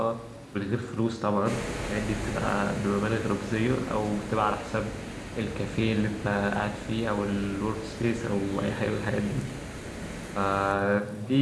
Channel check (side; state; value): both; identical; correlation 1.00